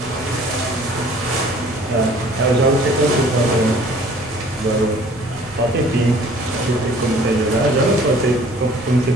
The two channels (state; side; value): normal; both; correlation 0.53